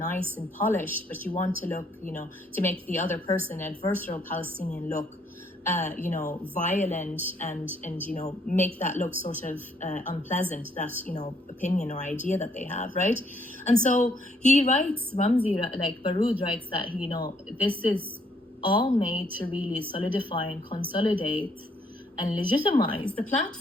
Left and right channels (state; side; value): normal; both; correlation 0.68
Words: and polished, but you want to look to make the other person, adversarial Palestinian, look violent and make that look sort of unpleasant, that opinion or idea that they have, right? And so he writes, Ramzi, like Baroud writes, that this is all made to really solidify and consolidate and legitimize the